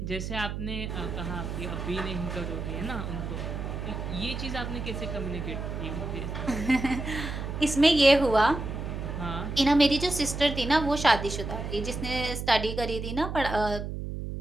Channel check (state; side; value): noise; right; hum, 5 dB below the sound